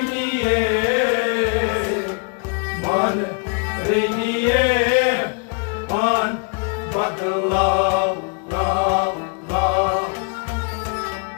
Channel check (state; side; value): quieter; right; 38.0 dB